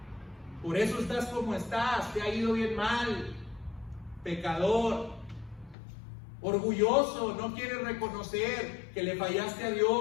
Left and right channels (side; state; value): right; drops out; at 5.8 s